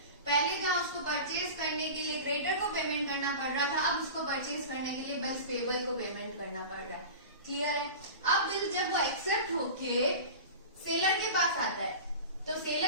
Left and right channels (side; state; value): both; inverted; correlation -0.33